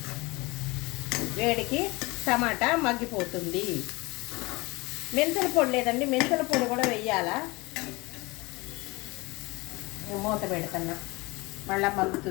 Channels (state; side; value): quieter; right; 23.9 dB